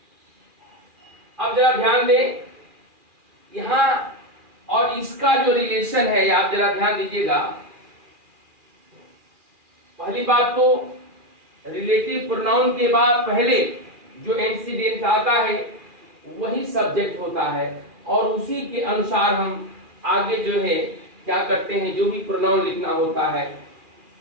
अब जरा ध्यान दें यहां, और इसका जो रिलेशन है आप जरा ध्यान दीजिएगा। पहली बात तो रिलेटिव प्रोनाउन के बाद पहले जो एंटीसीडेंट आता है वही सब्जेक्ट होता है और उसी के अनुसार हम आगे जो है क्या करते हैं, जो भी प्रोनाउन लिखना होता है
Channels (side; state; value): left; late; 2.4 ms